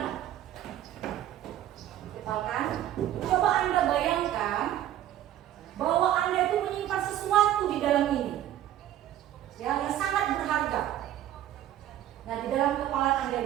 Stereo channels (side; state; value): left; quieter; 12.3 dB